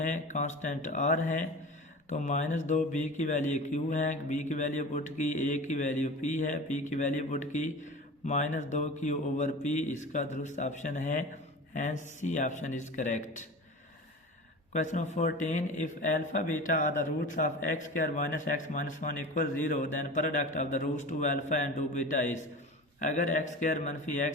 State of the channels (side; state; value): both; normal; correlation 0.34